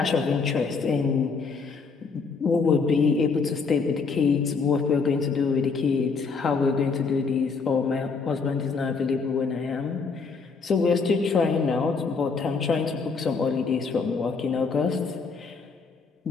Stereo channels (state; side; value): quieter; right; 4.8 dB